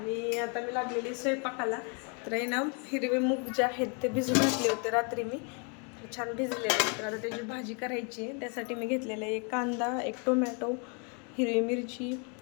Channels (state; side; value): quieter; right; 36.8 dB